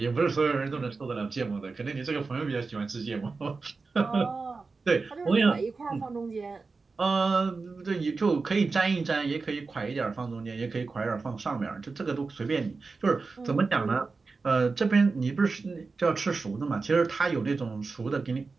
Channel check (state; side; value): quieter; left; 4.2 dB